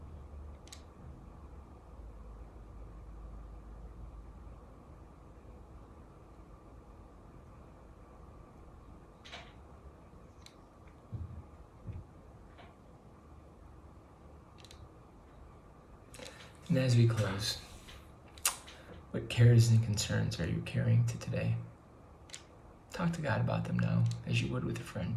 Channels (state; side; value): identical; both; correlation 1.00